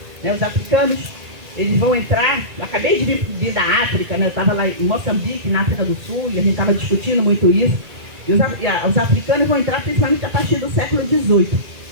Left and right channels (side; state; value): left; late; 2.3 ms